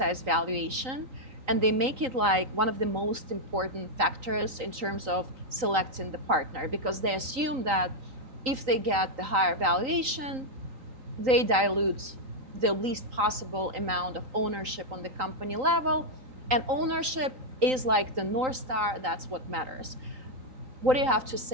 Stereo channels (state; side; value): late; left; 3.9 ms